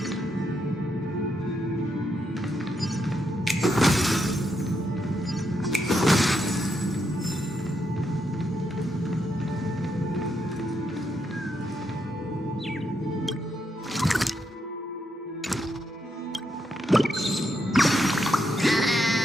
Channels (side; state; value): both; normal; correlation 0.80